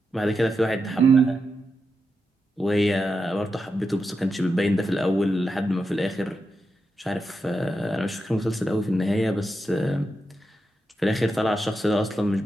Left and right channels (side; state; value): both; normal; correlation 0.87